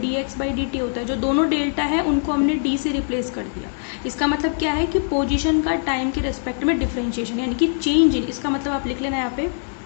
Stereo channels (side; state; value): right; silent; 64 dB below the other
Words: बाई डी टी होता है, जो दोनों डेल्टा है उनको हमने d से रिप्लेस कर दिया। इसका मतलब क्या है कि पोजीशन का टाइम के रेस्पेक्ट में डिफरेंशिएशन, यानी कि चेंज इन, इसका मतलब आप लिख लेना यहाँ पे